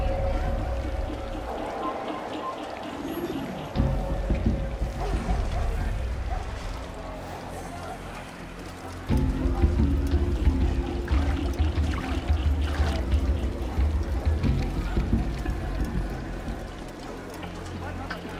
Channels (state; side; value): identical; both; correlation 1.00